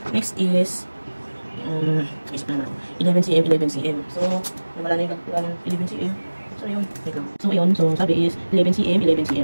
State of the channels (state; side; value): inverted; both; correlation -1.00